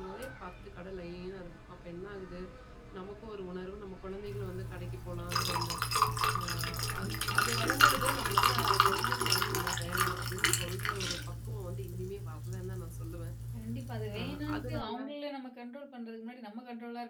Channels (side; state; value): both; identical; correlation 1.00